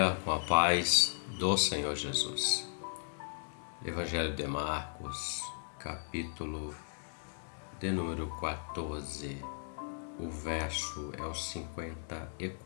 com a paz do Senhor Jesus. Evangelho de Marcos, capítulo de número 14. O verso é o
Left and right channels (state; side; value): silent; right; digital silence